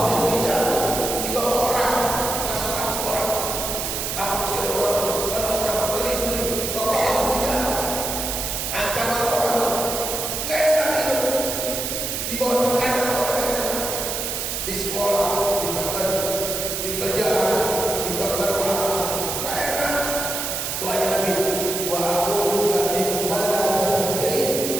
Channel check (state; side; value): noise; right; hiss, 3 dB below the sound